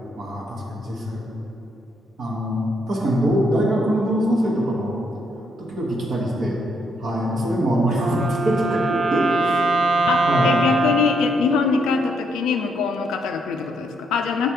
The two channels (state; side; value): normal; both; correlation 0.75